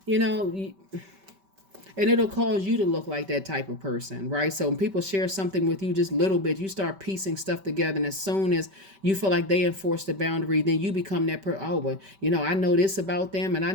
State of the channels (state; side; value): late; left; 5.2 ms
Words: you know, and it'll cause you to look like that type of person, right? So when people share something with you just a little bit, you start piecing stuff together, and as soon as you feel like they enforce the boundary, then you become that person. Oh, well, you know, I know this about them and I